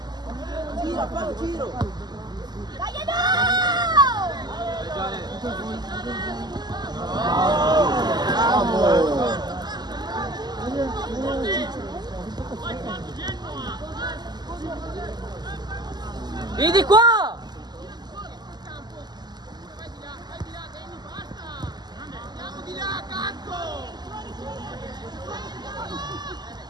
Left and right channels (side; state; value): left; late; 0.20 ms